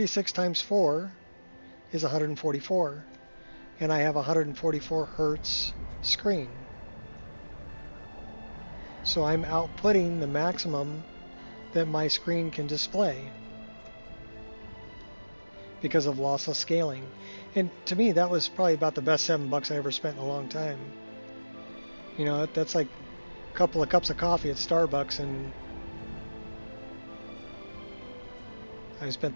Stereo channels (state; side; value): inverted; both; correlation -1.00